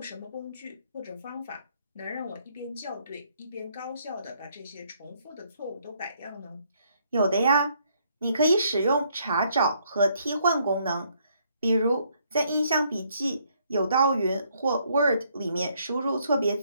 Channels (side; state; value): both; inverted; correlation -0.69